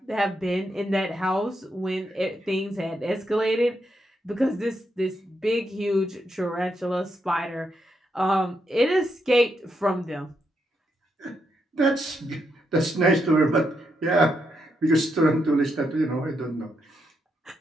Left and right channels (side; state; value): both; normal; correlation 0.81